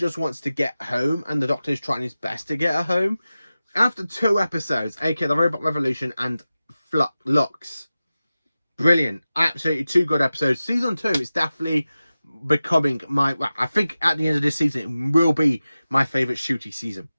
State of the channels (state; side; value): inverted; both; correlation -0.95